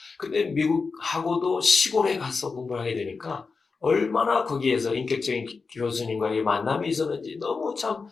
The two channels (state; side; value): quieter; right; 4.6 dB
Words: 근데 미국하고도 시골에 가서 공부를 하게 되니까 얼마나 거기에서 인격적인 교수님과의 만남이 있었는지 너무 참